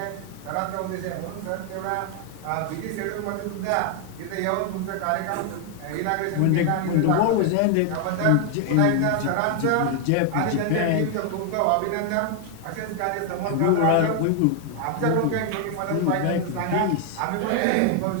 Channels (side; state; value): both; different; correlation 0.00